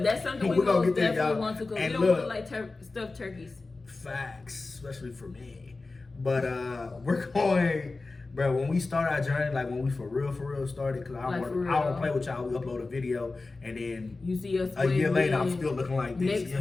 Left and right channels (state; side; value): quieter; right; 3.6 dB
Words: that's something we most definitely want to go. We don't look like stuffed turkeys. Facts, especially for me. But we're going, bro, when we start our journey, like when we for real started, because I don't play with y'all, we upload a video, and then you see us a year later, I'm still looking like this.